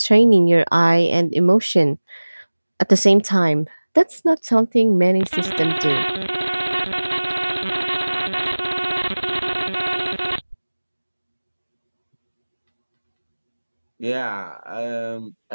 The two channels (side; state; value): both; inverted; correlation -1.00